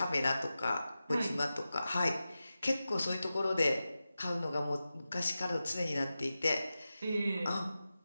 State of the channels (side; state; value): both; inverted; correlation -0.93